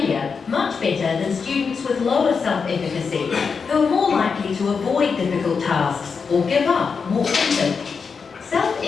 much better than students with lower self-efficacy, who are more likely to avoid difficult tasks or give up more quickly.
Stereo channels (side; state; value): right; quieter; 5.5 dB